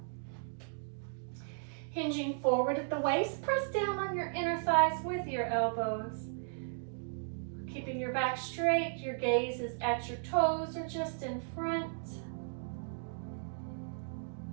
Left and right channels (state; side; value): silent; left; digital silence